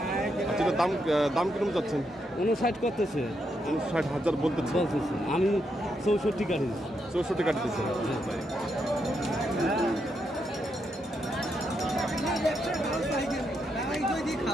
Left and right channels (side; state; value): both; normal; correlation 0.81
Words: আচ্ছা এটা দাম কিরকম যাচ্ছেন? 59 করতেছে। 59,000 বলতেছে। আমি 64 কাটি। 64 কাটতেছে।